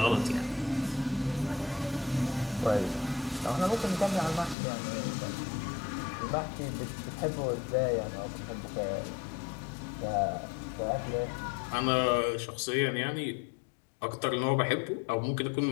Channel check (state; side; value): drops out; right; at 4.5 s